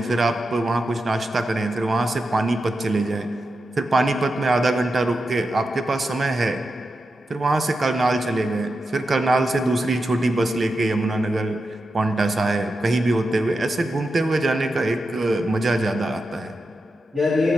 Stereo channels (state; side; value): normal; both; correlation 0.89